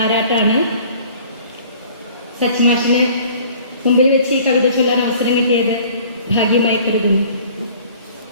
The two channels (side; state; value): both; inverted; correlation -0.51